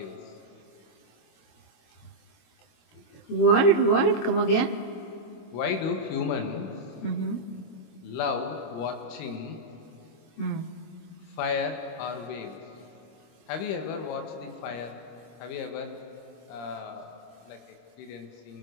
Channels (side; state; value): right; late; 26 ms